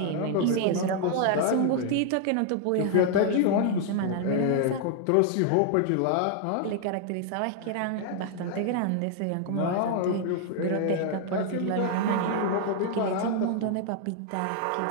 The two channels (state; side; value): different; both; correlation 0.00